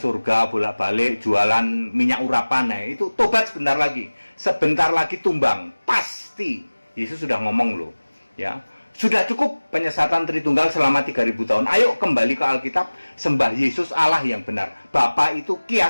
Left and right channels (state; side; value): inverted; both; correlation -1.00